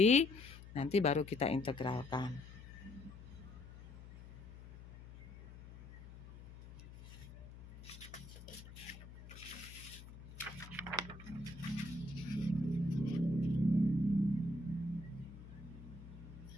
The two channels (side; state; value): left; noise; hum, 15 dB below the sound